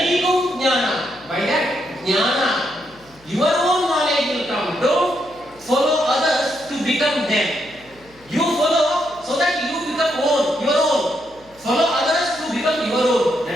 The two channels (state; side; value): noise; left; hum, 28 dB below the sound